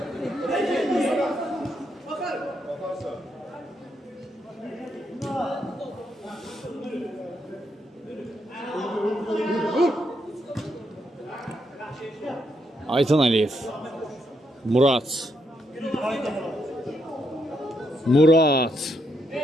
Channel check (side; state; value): both; normal; correlation 0.78